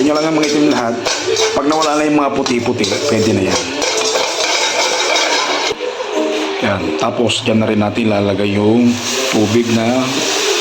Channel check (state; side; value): identical; both; correlation 1.00